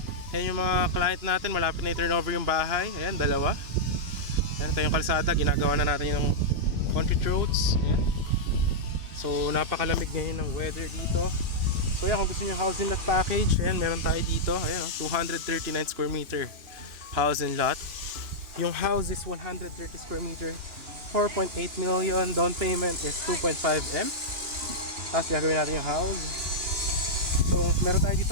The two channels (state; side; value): late; left; 3.0 ms